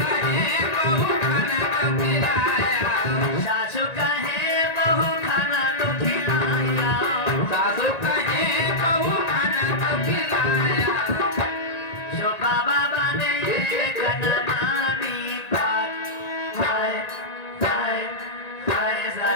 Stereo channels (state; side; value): late; right; 1.9 ms